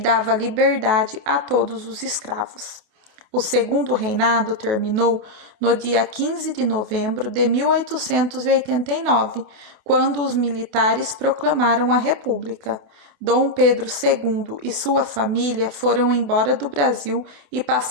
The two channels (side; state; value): left; late; 28 ms